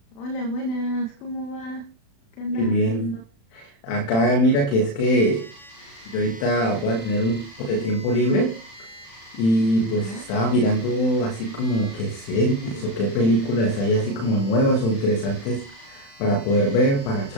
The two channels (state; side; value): late; right; 35 ms